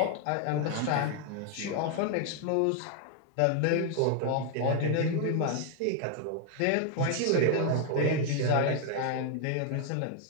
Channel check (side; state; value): both; different; correlation 0.01